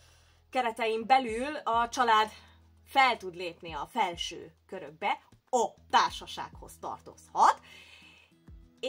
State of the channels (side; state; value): both; identical; correlation 1.00